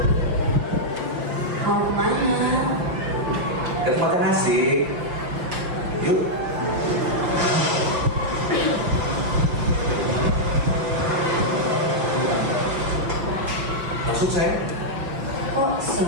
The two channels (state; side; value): late; left; 5.8 ms